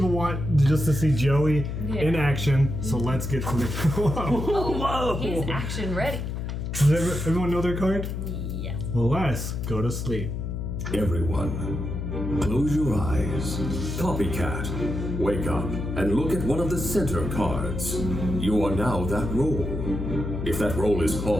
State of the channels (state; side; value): noise; left; hum, 4 dB below the sound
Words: want just to see Joey in action, so let's get to the. Whoa. He's action ready. Does everyone know their card? Yes. Well, let's go to sleep. Everyone, close your eyes. Copycat, wake up and look at one of the center cards. You are now that role. If that role is